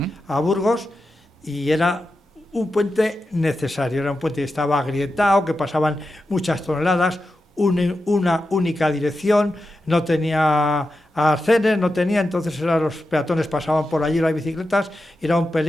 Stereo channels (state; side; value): normal; both; correlation 0.90